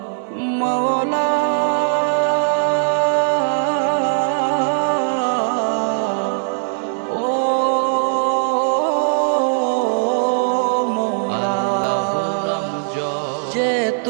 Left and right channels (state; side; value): silent; left; digital silence